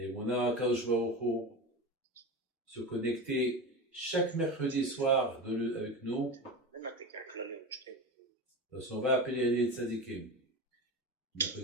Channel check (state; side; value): normal; both; correlation 0.24